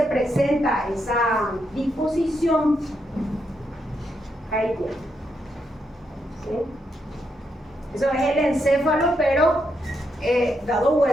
presenta esa disposición. Ahí tiene. ¿Sí? Eso es el encéfalo, pero dado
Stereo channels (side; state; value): both; normal; correlation 0.81